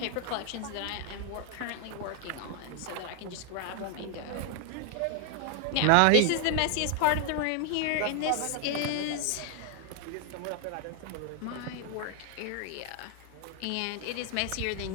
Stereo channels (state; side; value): different; both; correlation 0.00